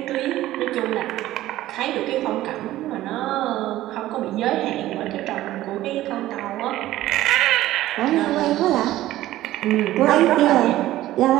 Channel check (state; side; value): quieter; left; 15.1 dB